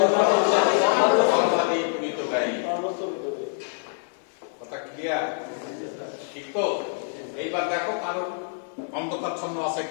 সর্বাধিক মিতবায়ী। কথা ক্লিয়ার? ঠিক তো? এইবার দেখো কারো অন্ধকারচ্ছন্ন আছে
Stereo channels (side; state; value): right; silent; 61 dB below the other